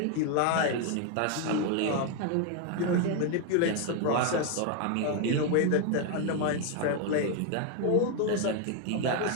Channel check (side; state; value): both; different; correlation 0.01